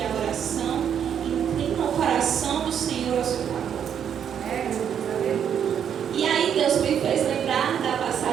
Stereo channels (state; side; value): quieter; left; 8.6 dB